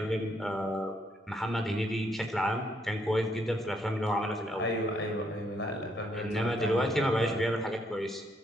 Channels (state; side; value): normal; both; correlation 0.72